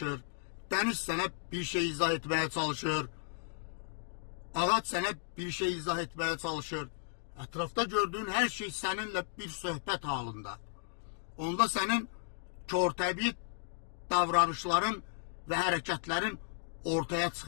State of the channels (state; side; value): silent; right; digital silence